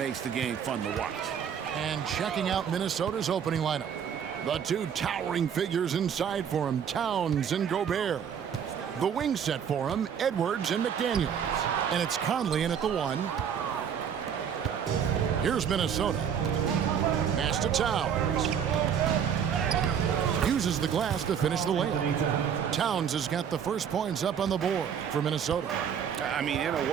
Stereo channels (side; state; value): left; quieter; 8.0 dB